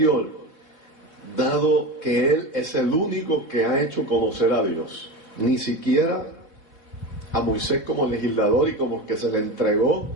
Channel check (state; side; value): late; right; 3.4 ms